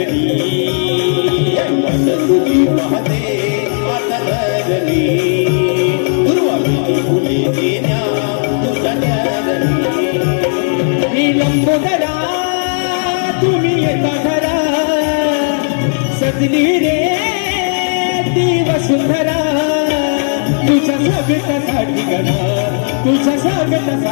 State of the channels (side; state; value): right; silent; digital silence